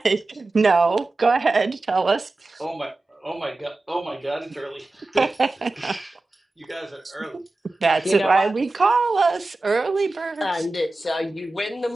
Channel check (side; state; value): left; quieter; 3.1 dB